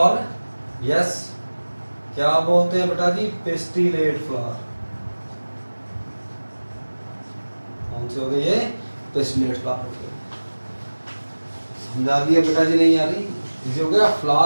यस क्या बोलते हैं बेटा जी? Pistillate flower. कौन से हो गए ये? पिस्टिलेट फ्लावर हो गए। समझा दिया बेटा जी? नहीं आ रही? इजी हो गया।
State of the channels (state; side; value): inverted; both; correlation -1.00